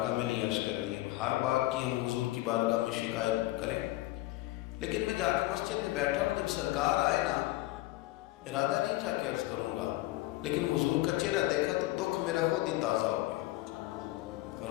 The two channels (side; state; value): right; quieter; 18.2 dB